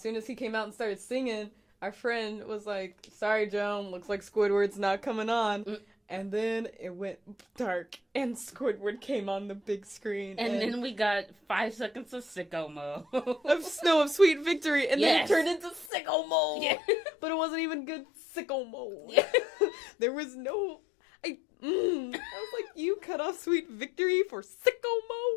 as he came out and started singing, our friend was like, sorry, Joan, looks like Squidward's not coming on. And then it went dark, and Squidward came on the big screen. And then we got 5 seconds of sicko mode. of Sweet Victory, and then it turned into sicko mode. Yeah. But it wasn't even good sicko mode. Yeah. There was no... I was like, you cut off Sweet Victory for sicko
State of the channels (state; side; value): drops out; right; at 15.9 s